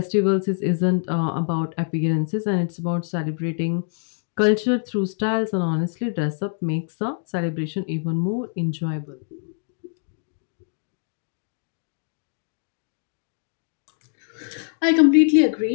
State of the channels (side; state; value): right; silent; 55 dB below the other